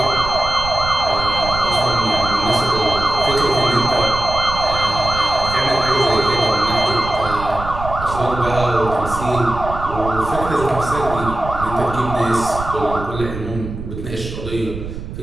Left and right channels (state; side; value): noise; right; rumble, 9 dB below the sound